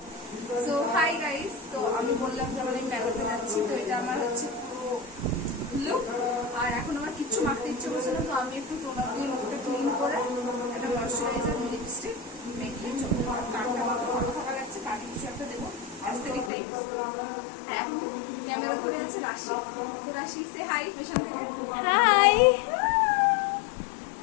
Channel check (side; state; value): right; drops out; at 16.5 s